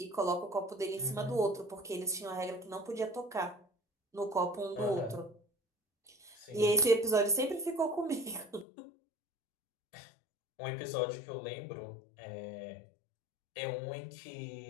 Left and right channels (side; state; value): right; drops out; at 8.7 s